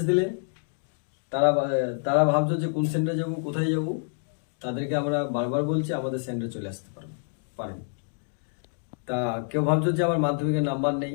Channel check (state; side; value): silent; right; digital silence